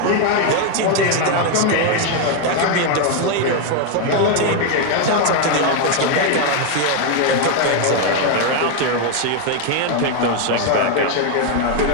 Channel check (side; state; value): both; different; correlation 0.01